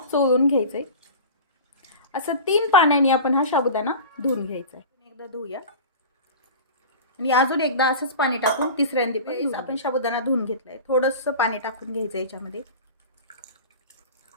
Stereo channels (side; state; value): both; inverted; correlation -0.34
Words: चोळून घ्यायचे। असं 3 पाण्याने आपण हा साबुदाणा धुवून घ्यायचा आहे। एकदा धुवूया आणि अजून एकदा असंच पाणी टाकून तिसऱ्यांदा आपण साबुदाणा धुवून घेतलाय। थोडंसं पाणी टाकून घ्यायचं याच्यामध्ये।